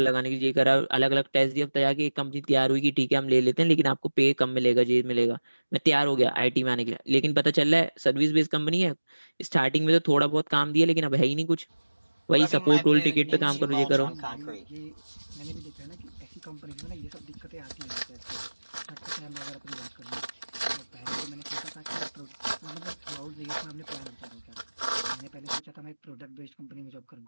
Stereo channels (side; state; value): both; inverted; correlation -1.00